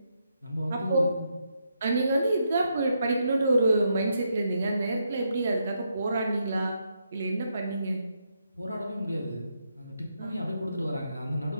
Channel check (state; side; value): inverted; both; correlation -0.80